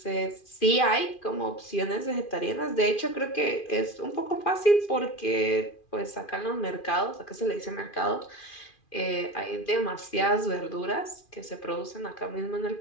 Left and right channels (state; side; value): late; right; 2.4 ms